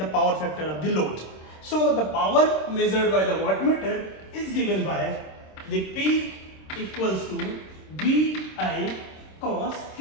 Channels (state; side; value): late; right; 26 ms